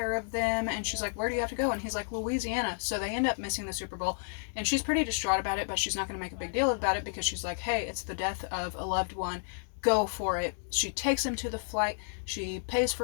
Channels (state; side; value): silent; right; digital silence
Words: of them. And she's like, where do you have to go? And he's like, Louisiana. So they end up missing the Super Bowl, and she's pretty distraught about it, but she's not going to make a big deal about it, because she's like, hey, it's the death of a loved one. Go for it. She takes him to the flight. She pays